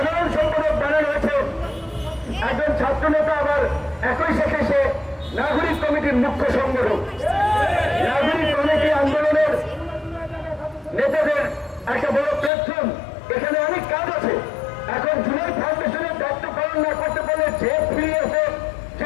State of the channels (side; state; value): right; drops out; at 12.5 s